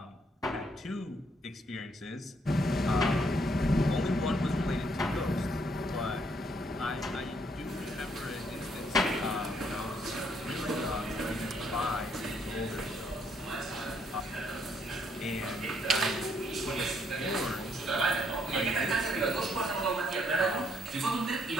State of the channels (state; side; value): normal; both; correlation 0.70